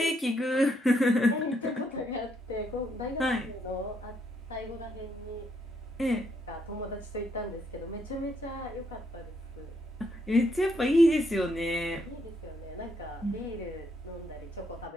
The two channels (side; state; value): both; normal; correlation 0.74